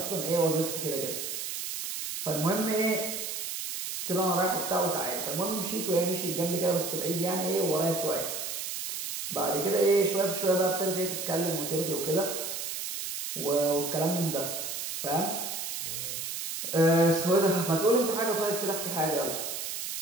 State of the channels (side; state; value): right; noise; hiss, 5 dB below the sound